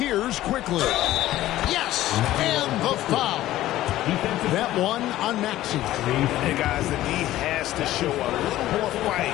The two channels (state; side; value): quieter; right; 14.7 dB